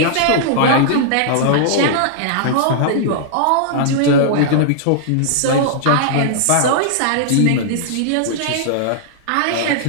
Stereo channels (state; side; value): different; both; correlation -0.01